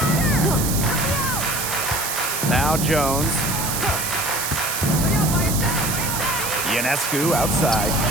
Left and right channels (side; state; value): right; noise; hiss, 2 dB below the sound